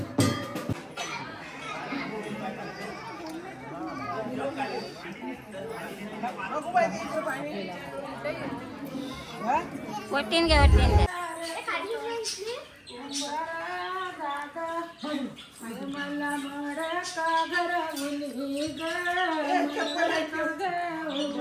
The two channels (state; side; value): identical; both; correlation 1.00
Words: वटीन घ्या वटीन घ्या.